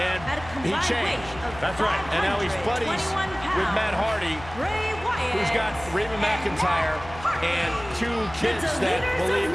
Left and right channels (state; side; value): noise; left; hum, 16 dB below the sound